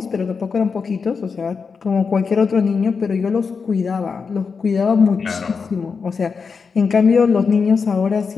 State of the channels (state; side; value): quieter; right; 5.3 dB